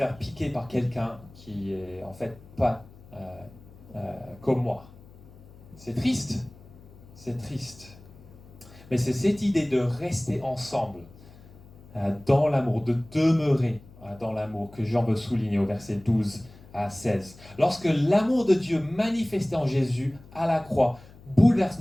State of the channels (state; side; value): noise; left; hum, 22 dB below the sound